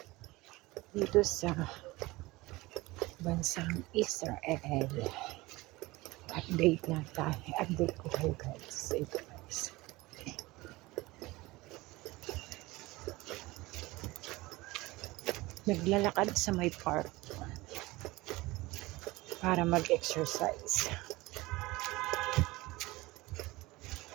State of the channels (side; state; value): left; quieter; 20.8 dB